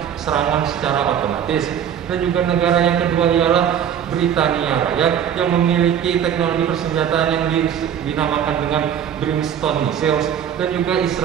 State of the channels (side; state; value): left; quieter; 9.0 dB